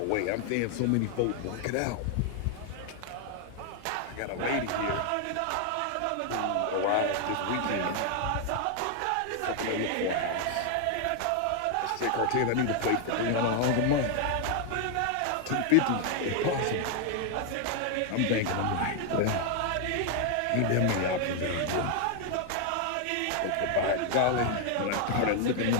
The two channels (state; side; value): different; both; correlation 0.00